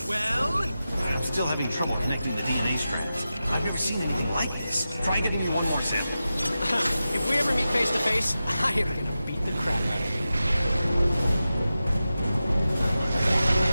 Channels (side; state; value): both; inverted; correlation -0.92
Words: Still having trouble connecting the DNA strands. I've never seen anything like this. Try getting me one more sample. If we ever meet face to face, I am gonna beat the crap out of you.